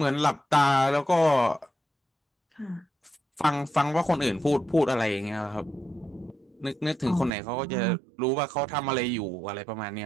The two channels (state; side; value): drops out; left; at 7.3 s